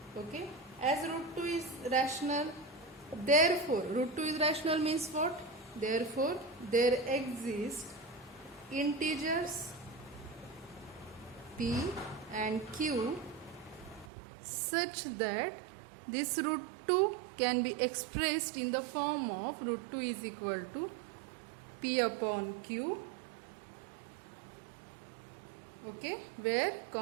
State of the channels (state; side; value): drops out; left; at 14.1 s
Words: Okay, as root 2 is rational, therefore root 2 is rational means what? Therefore there exist integers p and q such that this root 2 can be expressed in the form of root 2 is equal to p upon q. Okay,